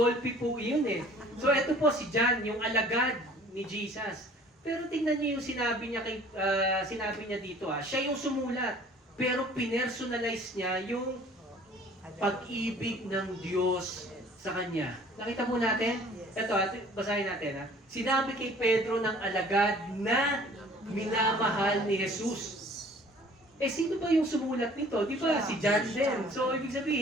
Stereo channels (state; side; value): normal; both; correlation 0.51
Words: po yun eh. So ito po si John, yung alagad ni Jesus. Pero tingnan niyo yung sinabi niya dito siya yung sumulat. Pero pinersonalize niya yung pag-ibig ng Diyos sa kanya. Nakita mo natin? Ito, basahin natin. Sinabi kay Pedro ng alagad na minamahal ni Jesus. Sino ba yung sumulat nito? Di ba? Si John din. So, ibig